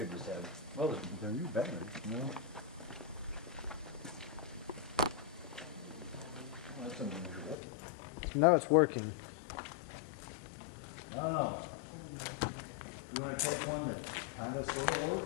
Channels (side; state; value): right; drops out; at 7.6 s